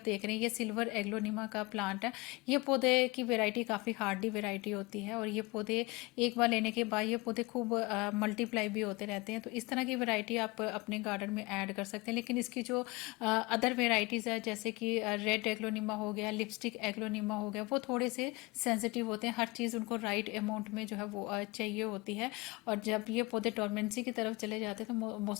देख रहे हैं, ये सिल्वर एग्लोनिमा का प्लांट है। ये पौधे की वेराइटी काफ़ी हार्डी वेराइटी होती है और ये पौधे एक बार लेने के बाद ये पौधे खूब मल्टीप्लाई भी होते रहते हैं। तो इस तरह की वेराइटी आप अपने गार्डन में ऐड कर सकते हैं। लेकिन इसकी जो अदर वेराइटीज़ है, जैसे कि रेड एग्लोनिमा हो गया, लिपस्टिक एग्लोनिमा हो गया, वो थोड़े से सेंसिटिव होते हैं। हर चीज़ उनको राइट अमाउंट में जो है वो चाहिए होती है, और जब ये पौधे डोरमेंसी की तरफ चले जाते हैं तो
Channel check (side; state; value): right; quieter; 24.0 dB